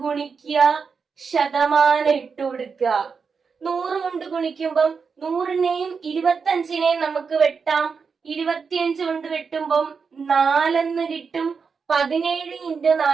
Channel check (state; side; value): quieter; left; 5.5 dB